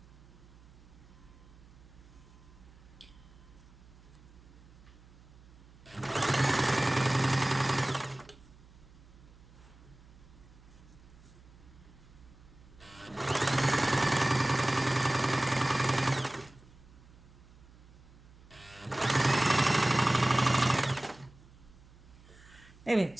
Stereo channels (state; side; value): noise; right; hum, 23 dB below the sound